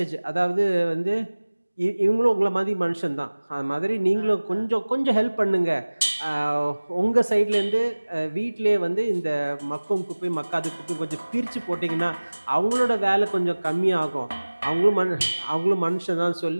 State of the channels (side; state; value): both; inverted; correlation -1.00